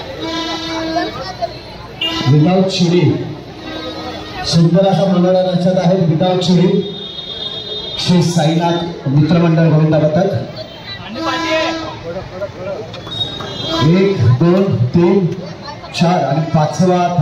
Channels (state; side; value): identical; both; correlation 1.00